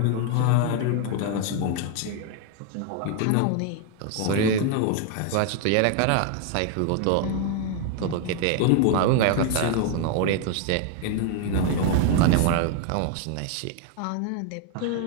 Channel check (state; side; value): different; both; correlation 0.00